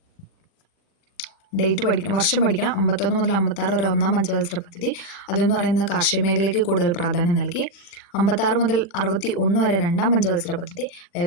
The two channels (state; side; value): late; right; 40 ms